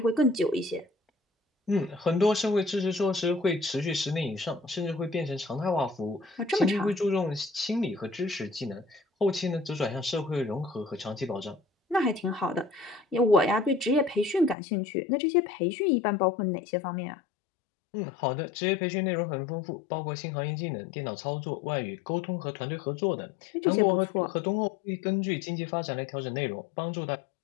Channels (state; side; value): drops out; right; at 14.6 s